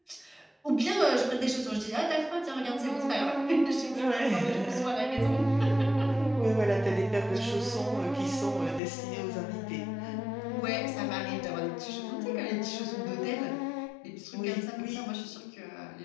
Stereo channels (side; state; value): right; drops out; at 8.8 s